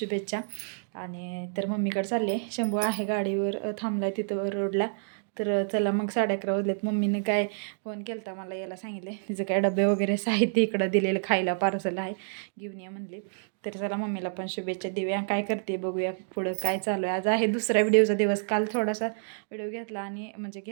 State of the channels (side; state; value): left; silent; digital silence